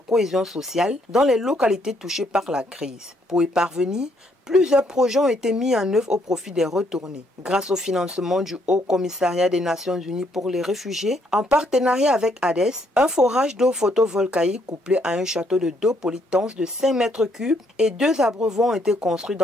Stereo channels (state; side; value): normal; both; correlation 0.70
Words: sociale dans les localités touchées par la crise. Pour y parvenir, plusieurs projets ont été mis en œuvre au profit des retournés. Grâce au financement du Haut Commissariat des Nations Unies pour les réfugiés, en partenariat avec Hades, un forage d'eau photovoltaïque couplé à un château d'eau polytense de 5 mètres cubes et 2 abreuvons ont été construits